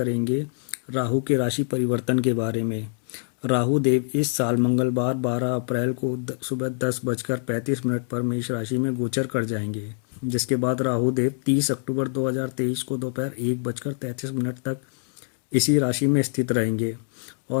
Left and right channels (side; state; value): right; silent; 58 dB below the other